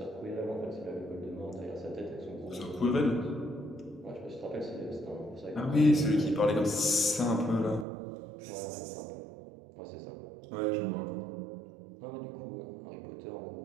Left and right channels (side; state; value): left; drops out; at 7.9 s